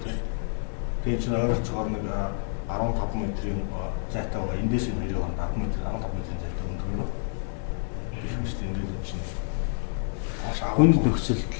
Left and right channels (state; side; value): silent; right; digital silence